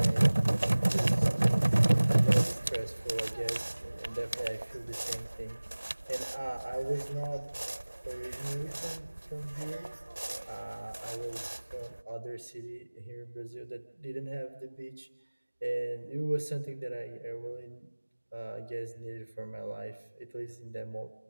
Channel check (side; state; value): both; inverted; correlation -1.00